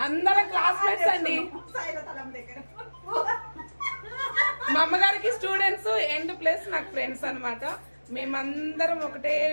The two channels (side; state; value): both; inverted; correlation -1.00